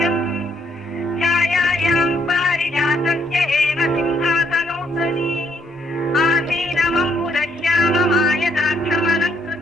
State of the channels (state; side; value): normal; both; correlation 0.71